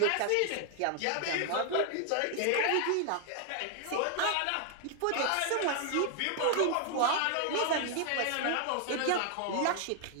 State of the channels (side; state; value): both; different; correlation 0.00